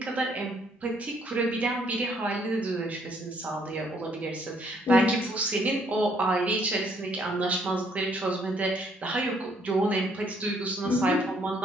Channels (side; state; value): both; normal; correlation 0.67